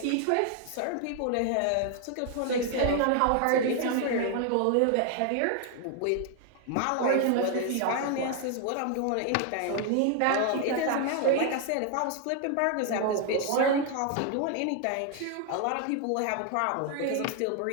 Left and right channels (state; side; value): different; both; correlation 0.01